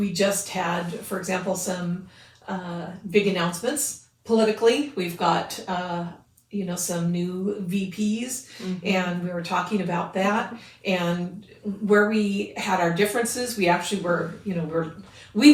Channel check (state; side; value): identical; both; correlation 1.00